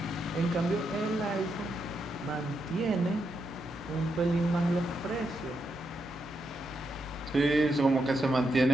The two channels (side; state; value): right; noise; hum, 24 dB below the sound